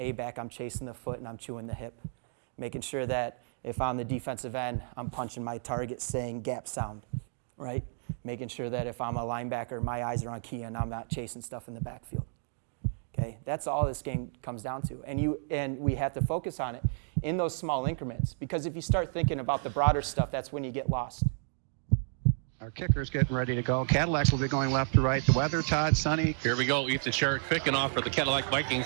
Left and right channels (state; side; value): silent; left; digital silence